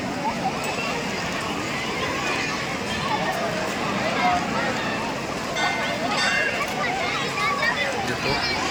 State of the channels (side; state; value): both; identical; correlation 1.00